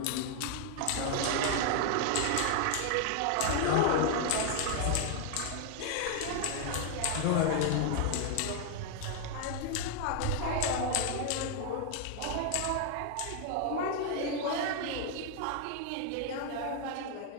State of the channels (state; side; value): different; both; correlation 0.00